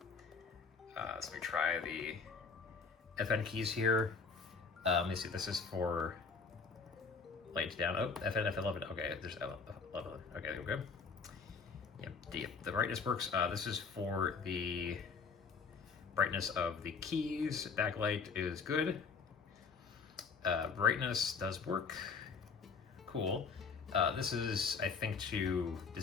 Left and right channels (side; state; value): right; quieter; 5.2 dB